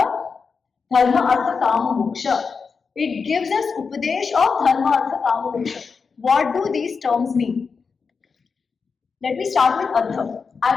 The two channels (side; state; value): right; quieter; 5.2 dB